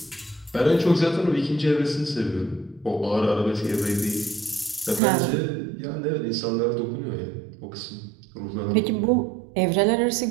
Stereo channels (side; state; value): left; drops out; at 5.0 s